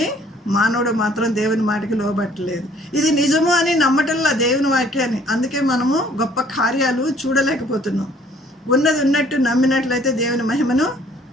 మానవుడు మాత్రం దేవుని మాటకి లోబట్టలేదు. ఇది నిజము అని నమ్మటంలా దేవుని వాక్యాన్ని. అందుకే మనము గొప్ప కార్యాలు చూడలేకపోతున్నాం. ఉన్నది ఉన్నట్టు నమ్మినట్లయితే దేవుని మహిమను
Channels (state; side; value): normal; both; correlation 0.59